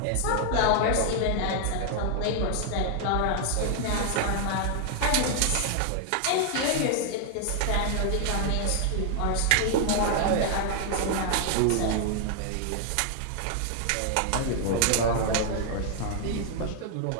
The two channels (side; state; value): both; different; correlation 0.00